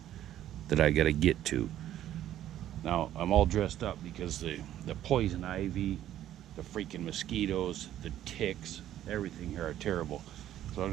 that I gotta get to. Now I'm all dressed up because the poison ivy, the freaking mosquitoes, the ticks, everything here are terrible. So what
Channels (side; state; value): left; quieter; 12.1 dB